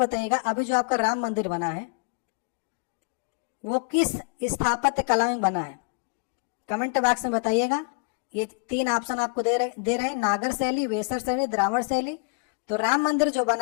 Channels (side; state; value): right; quieter; 34.7 dB